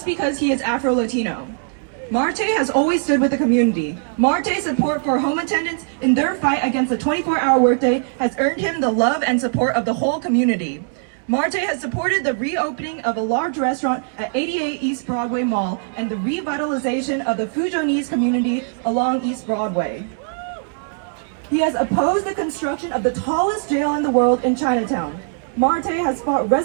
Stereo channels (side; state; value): left; silent; digital silence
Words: because he is Afro-Latino. Marte has always stood with the community. Marte's support for home attendants in their fight against the 24-hour workday has earned him the love and support of the whole community. Marte has supported the reopening of a large restaurant at 88 East Broadway Mall and the revitalization of the Fujonese community along East Broadway. He has opposed the construction of the tallest jail in the world in Chinatown. Marte has fought